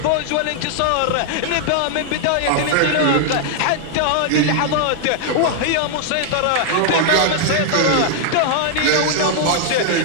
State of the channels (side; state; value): both; different; correlation 0.00